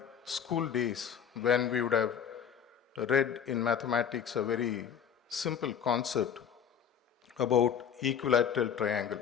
school days when we would have read in mathematics a very simple concept about equilateral triangle.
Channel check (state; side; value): quieter; right; 8.0 dB